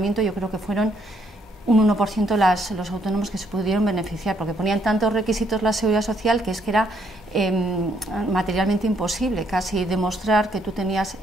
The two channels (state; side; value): normal; both; correlation 0.70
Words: yo creo que fueron un 1% los autónomos que se pudieron beneficiar, porque ponían tantos requisitos la Seguridad Social que es que era materialmente imposible casi demostrar que tú tenías